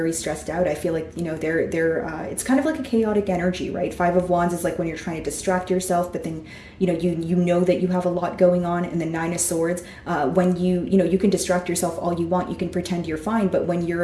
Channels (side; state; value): both; identical; correlation 1.00